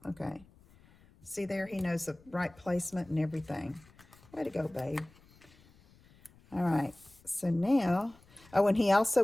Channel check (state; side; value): noise; left; rumble, 27 dB below the sound